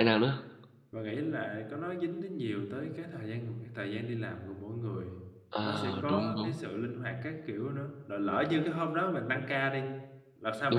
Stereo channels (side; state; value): both; identical; correlation 1.00